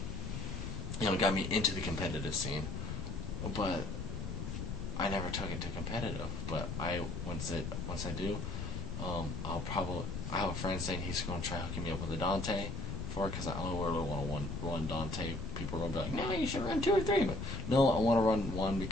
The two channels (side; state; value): left; noise; rumble, 5 dB below the sound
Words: Got me into the competitive scene. But I never took it to competitive. But once I do, I have a friend saying he's going to try hooking me up with a Dante for it because I only really want to run Dante. People are going to be like, no, you should run 2 or 3. But no, I want to run 1